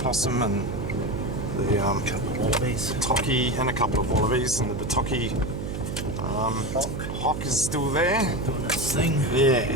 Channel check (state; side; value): noise; right; hum, 5 dB below the sound